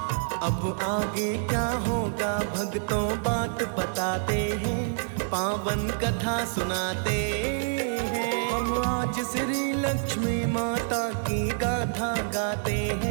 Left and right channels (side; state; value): left; silent; 60 dB below the other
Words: अब आगे क्या होगा भक्तों बात बताते हैं, पावन कथा सुनाते हैं। हम आज श्री लक्ष्मी माता की गाथा गाते